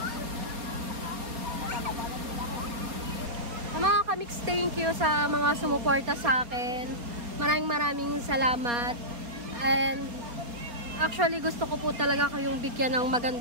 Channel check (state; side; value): late; left; 4.3 ms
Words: Mga kamix, thank you sa mga sumuporta sa akin. Maraming salamat. And actually gusto ko po talaga kayong bigyan ng